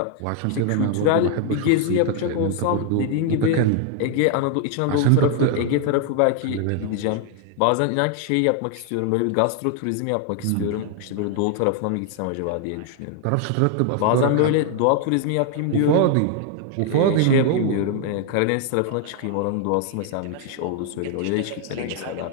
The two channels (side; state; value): both; different; correlation 0.00